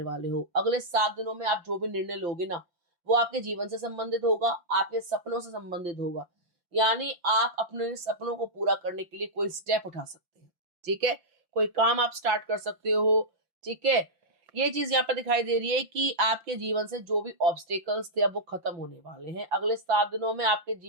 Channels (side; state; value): left; late; 5.8 ms